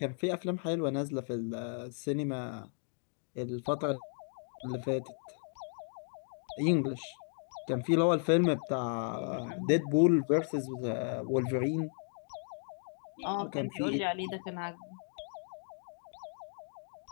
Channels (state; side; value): silent; right; 55 dB below the other